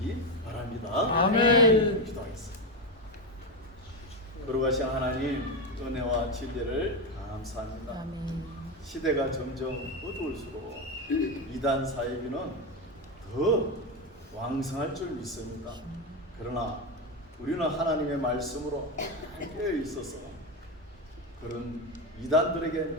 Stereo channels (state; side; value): normal; both; correlation 0.12